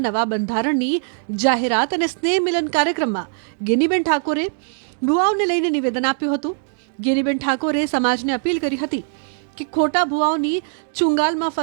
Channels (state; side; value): silent; left; digital silence